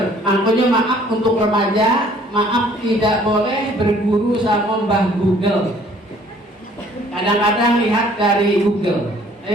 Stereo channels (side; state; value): both; normal; correlation 0.57